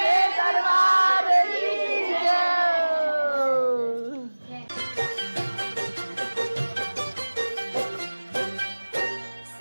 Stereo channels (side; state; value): both; inverted; correlation -1.00